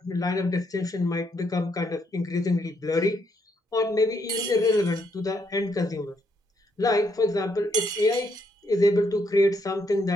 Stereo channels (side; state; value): both; normal; correlation 0.74